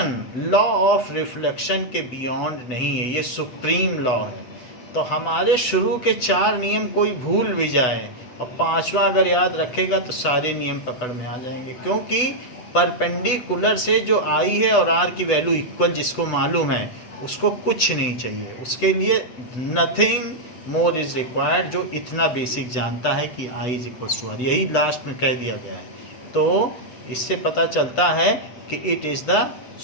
लॉ ऑफ रिफ्लेक्शन के बियॉन्ड नहीं है, ये सुप्रीम लॉ है। तो हमारे शुरू के 4 नियम कोई भूल भी जाए और 5वां अगर याद रखेगा तो सारे नियम पकड़ में आ जाएंगे, क्योंकि परपेंडिकुलर से जो आई है और आर की वैल्यू इक्वल जिसको मालूम है उसको कुछ नहीं चाहिए, उसके लिए नथिंग मोर इज रिक्वायर्ड, जो इतना बेसिक जानता है कि I is equal to are, यही लास्ट में कह दिया गया है। तो इससे पता चलता है कि it is the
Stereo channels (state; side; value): late; right; 8.0 ms